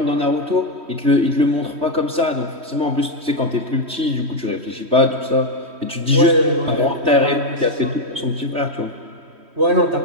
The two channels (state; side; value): late; left; 3.1 ms